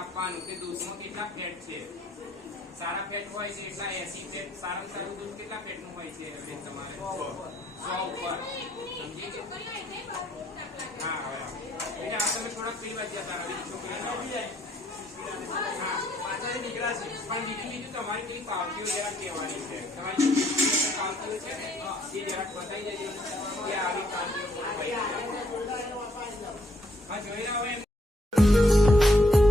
કે દૂધમાં કેટલા ફેટ છે. સારા ફેટ હોય છે એટલા 80 ફેટ. સારામાં સારું દૂધ કેટલા ફેટ નું હોય છે તમારે? 100 ઉપર. સમજી ગયો? હા હવે બેટા આ તમે થોડાક પીવા જતા રહો. છોકરી હા પાછળ નીકળ્યા છે પણ બીજું તમારી કઈ પાવતીઓ જરા કહેવાની છે. તમારી પાવતીઓ છે ને એ જરાક બતાવી દેજો કે આવી પાવતીઓ હા જોઈ રહ્યા હોય.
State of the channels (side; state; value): both; normal; correlation 0.70